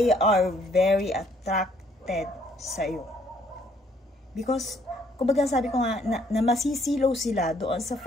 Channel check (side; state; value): both; normal; correlation 0.65